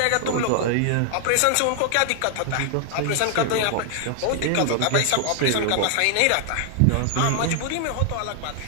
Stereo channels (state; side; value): different; both; correlation 0.00